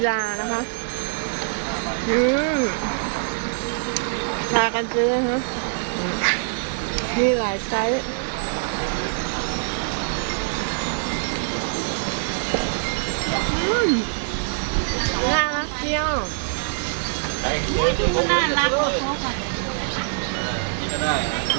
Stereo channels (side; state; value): left; silent; 63 dB below the other